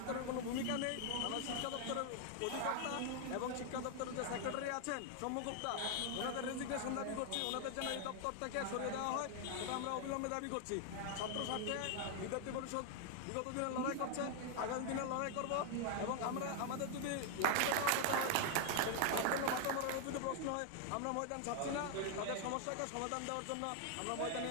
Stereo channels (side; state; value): both; different; correlation 0.00